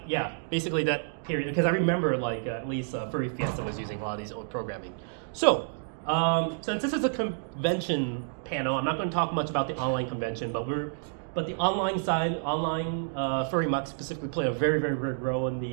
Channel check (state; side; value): silent; left; digital silence